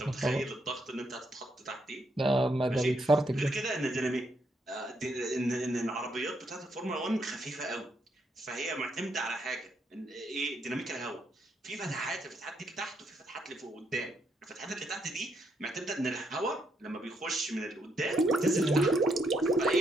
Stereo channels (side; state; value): both; normal; correlation 0.76